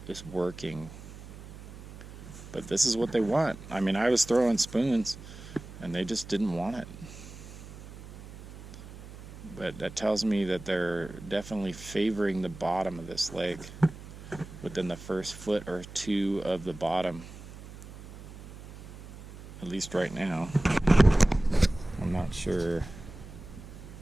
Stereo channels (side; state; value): right; noise; hum, 15 dB below the sound